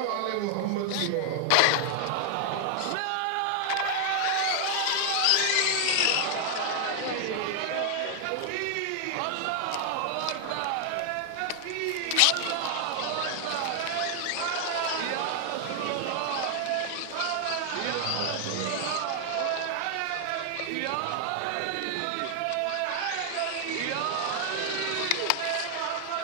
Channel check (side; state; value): both; different; correlation 0.00